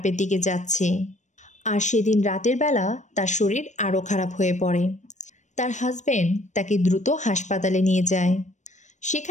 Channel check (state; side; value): late; right; 0.35 ms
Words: দিকে যাচ্ছে, আর সেদিন রাতের বেলা তার শরীর আরও খারাপ হয়ে পড়ে। তার হাজব্যান্ড তাকে দ্রুত হাসপাতালে নিয়ে যায়।